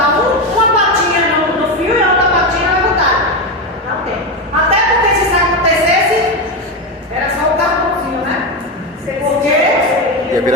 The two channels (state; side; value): normal; both; correlation 0.13